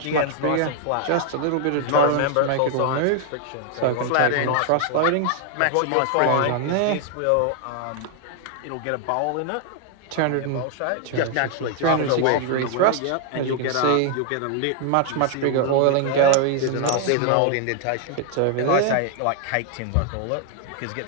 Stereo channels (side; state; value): both; different; correlation 0.00